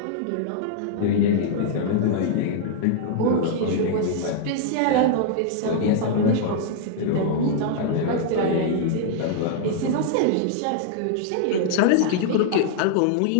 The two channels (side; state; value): both; different; correlation -0.01